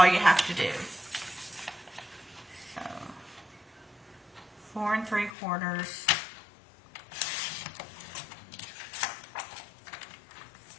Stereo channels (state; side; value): drops out; right; at 5.3 s